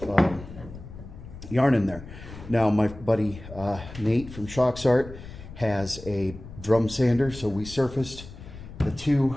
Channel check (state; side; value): noise; left; rumble, 14 dB below the sound